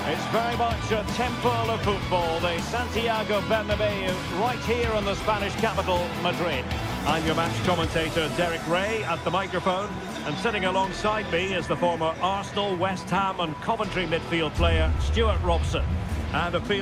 It's very much a temple of football, the Santiago Bernabeu, right here in the Spanish capital, Madrid. I'm your match commentator, Derek Ray, at the microphone. And sitting alongside me is the former Arsenal, West Ham and Coventry midfield player, Stuart Robson. And a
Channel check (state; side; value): identical; both; correlation 1.00